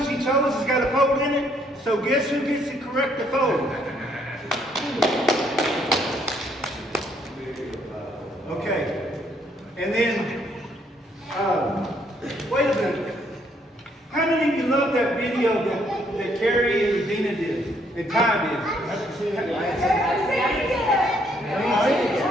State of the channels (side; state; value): both; normal; correlation 0.68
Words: chose has got a fold in it. So guess who gets to correct the fold? Okay. And then, wait a minute. How many of you love that video that Carrie and Regina did and Ty did?